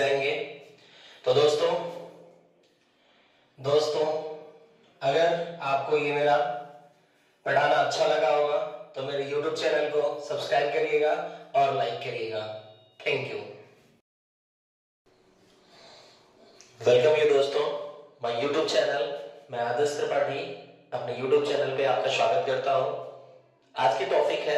तो दोस्तों अगर आपको ये मेरा पढ़ाना अच्छा लगा होगा तो मेरे YouTube चैनल को सब्सक्राइब करिएगा और लाइक करिएगा। Thank you. वेलकम यू दोस्तों माय YouTube चैनल। मैं आदर्श त्रिपाठी अपने YouTube चैनल पे आपका स्वागत करता हूं। आज की टॉपिक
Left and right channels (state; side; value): identical; both; correlation 1.00